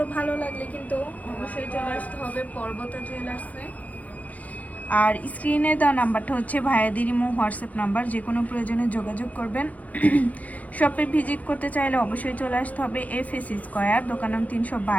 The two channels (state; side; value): late; right; 0.073 ms